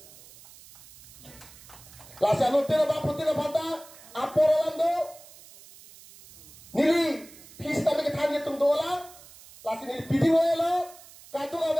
Lasa nu tira ba putira phata, aporolando, nili pista me ke thani tum dola, lasi nili pidi lo, katu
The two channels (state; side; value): noise; right; hiss, 21 dB below the sound